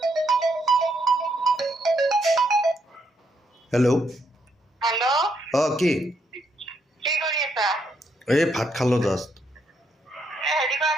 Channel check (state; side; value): normal; both; correlation 0.76